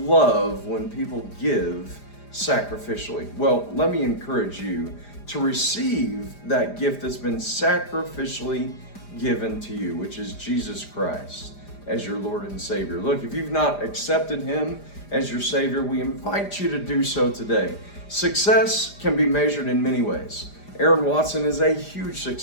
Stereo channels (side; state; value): right; late; 4.9 ms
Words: love when people give sacrificially. Well, let me encourage you to receive that gift that's been sacrificially given to you, which is Jesus Christ as your Lord and Savior. Look, if you've not accepted him as your Savior, we invite you to do so today. Success can be measured in many ways. Aaron Watson is a huge